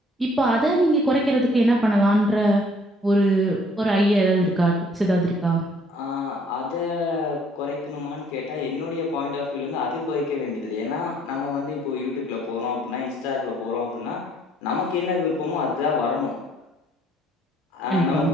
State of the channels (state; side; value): normal; both; correlation 0.61